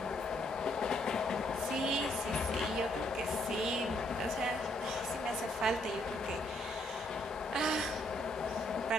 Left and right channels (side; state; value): both; normal; correlation 0.72